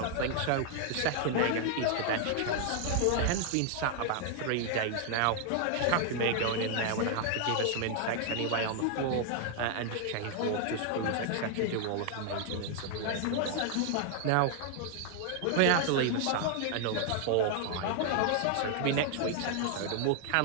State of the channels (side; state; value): both; different; correlation 0.00